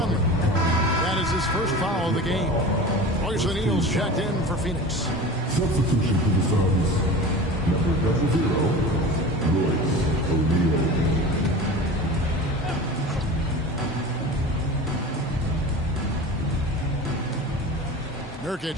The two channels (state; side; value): normal; both; correlation 0.34